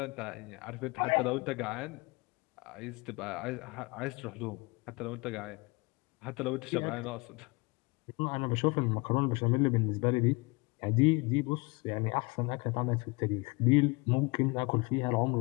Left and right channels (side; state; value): right; quieter; 27.1 dB